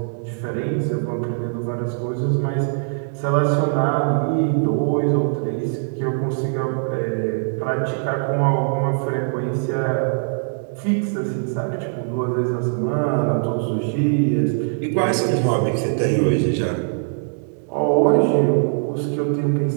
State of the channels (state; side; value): silent; left; digital silence